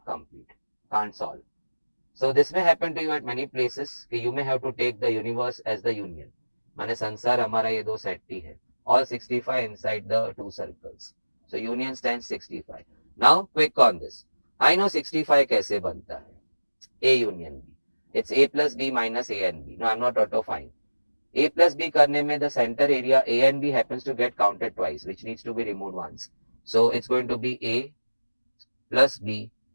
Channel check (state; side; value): inverted; both; correlation -1.00